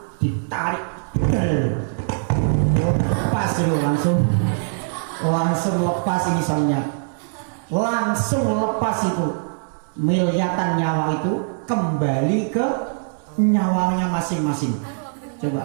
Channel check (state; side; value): silent; left; 64 dB below the other